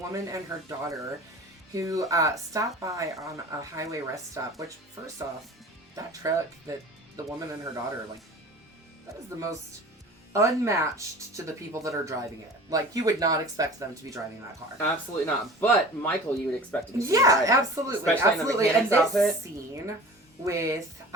and her daughter who stopped by on a highway rest stop, which, first off, that truck that the woman and her daughter, like, that is the most unmatched to the people that are driving it. Like, you would not expect them to be driving that car. Absolutely not. But Michael, you would expect to be. Yeah, absolutely. Especially and this scene with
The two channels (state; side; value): normal; both; correlation 0.40